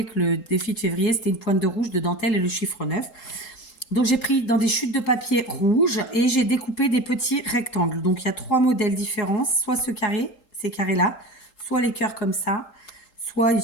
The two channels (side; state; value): right; late; 3.8 ms